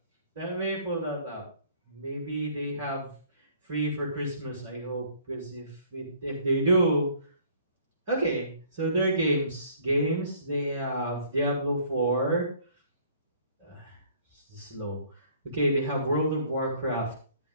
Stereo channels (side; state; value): both; inverted; correlation -0.57